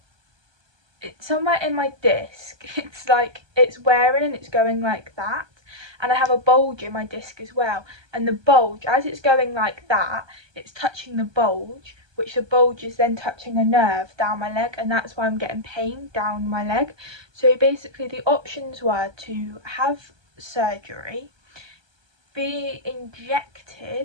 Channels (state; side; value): late; left; 1.2 ms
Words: it's somewhere in my disc, it's like it's wearing and it's going like that, and I have a bulge in my disc as well, and the bulge, as it's going like that, it's touching the bulge, which the bulge is then touching a nerve down my leg, and that's why I'm getting pain down my leg. So basically the options were to have surgery, be